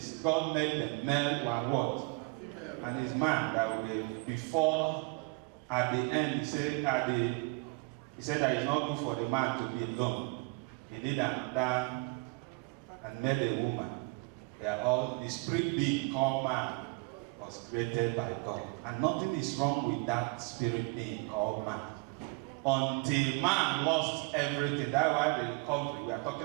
God made them male and what? And His man that will be before, at the end, He said that it's not good for the man to be alone. He needed another and made a woman. They are all the spirit being called man was created by God. And nothing is wrong with that spirit being called man. Until man lost everything. That's why the recovery. We are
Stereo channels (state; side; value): quieter; left; 29.0 dB